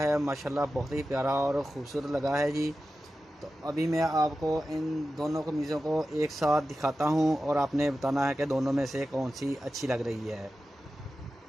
माशाल्लाह बहुत ही प्यारा और ख़ूबसूरत लगा है जी। तो अभी मैं आपको इन दोनों कमीज़ों को एक साथ दिखाता हूँ और आपने बताना है कि दोनों में से कौन सी अच्छी लग रही है।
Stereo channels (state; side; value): normal; both; correlation 0.93